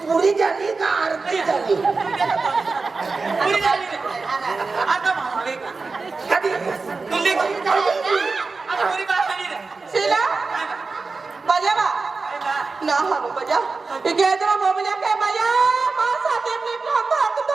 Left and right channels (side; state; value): left; quieter; 4.1 dB